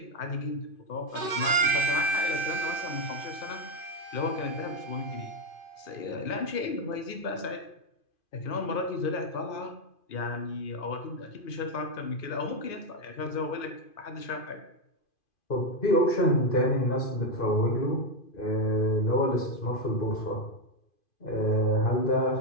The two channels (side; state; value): right; late; 2.5 ms